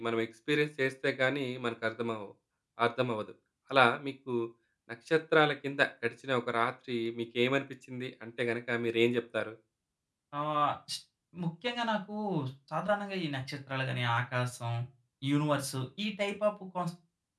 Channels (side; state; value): both; identical; correlation 1.00